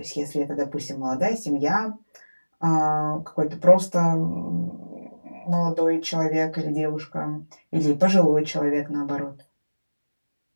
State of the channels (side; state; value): both; inverted; correlation -1.00